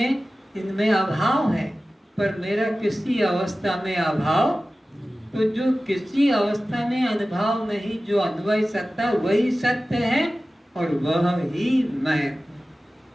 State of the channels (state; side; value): normal; both; correlation 0.96